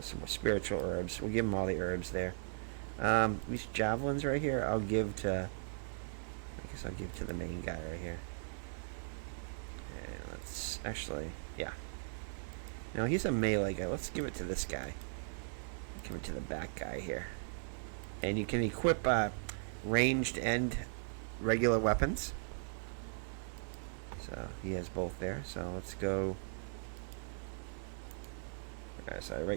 some more spiritual herbs. We'll give him all the herbs there. These javelins right here, I'll give to the main guy right here. And let's actually, yeah. No, he's a melee guy. Let's give it to this guy. Give it to the back guy here. And you can equip ranged and regular weapons. So he has both there. So let's go. Alright, so I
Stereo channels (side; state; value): left; silent; 52 dB below the other